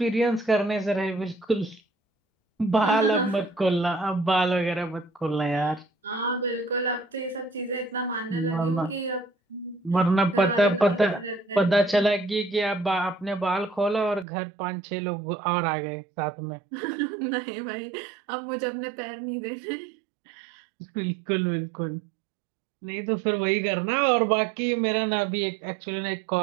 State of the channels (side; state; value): left; drops out; at 14.2 s